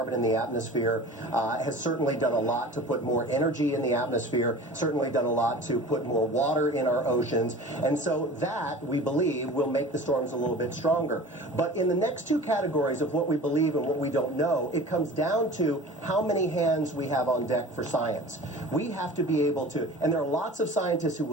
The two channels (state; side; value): normal; both; correlation 0.40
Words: in the atmosphere has certainly done a lot to put more energy in the atmosphere, certainly done a lot to put more water in our oceans, and so that, we believe, will make the storms a little bit stronger. But in the next two categories of what we believe and what we don't know, it comes down to how many hands we have on deck for science. We have to be able to, and there are lots of scientists who